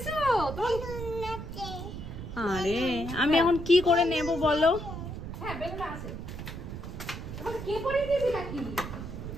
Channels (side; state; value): right; noise; rumble, 8 dB below the sound